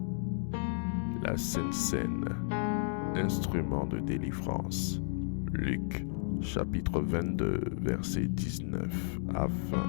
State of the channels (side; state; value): right; silent; digital silence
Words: La Sainte Seine, instrument de délivrance. Luc, chapitre 22, versets 19 à 20.